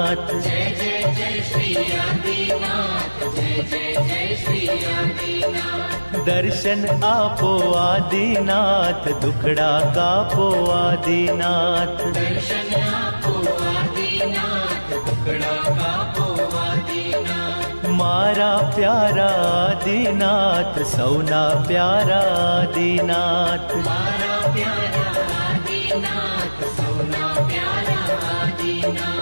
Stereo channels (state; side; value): inverted; both; correlation -1.00